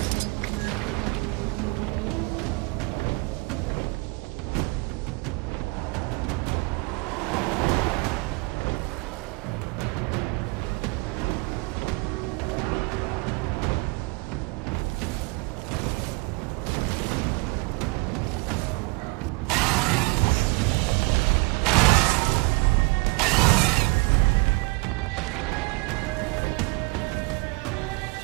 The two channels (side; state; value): left; quieter; 26.4 dB